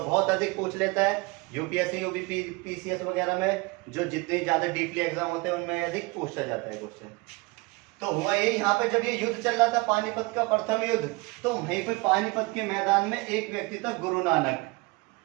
अधिक पूछ लेता है यूपीएससी, यूपी, पीसीएस वगैरह में, जो जितने ज्यादा डीपली एग्जाम होते हैं उनमें अधिक पूछा जाता है क्वेश्चन। तो हुआ ये, यहाँ पे जब ये युद्ध चल रहा था, पानीपत का प्रथम युद्ध, तो वहीं पे पानीपत के मैदान में एक व्यक्ति था, गुरु नानक।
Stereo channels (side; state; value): left; quieter; 25.4 dB